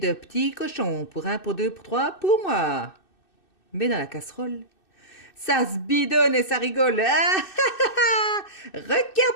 petits cochons, pour 1, pour 2, pour 3, pour moi. Mais dans la casserole, ça se bidonne et ça rigole.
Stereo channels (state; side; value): late; right; 2.6 ms